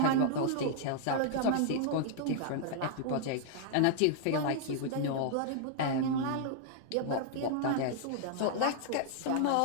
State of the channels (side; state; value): both; different; correlation -0.01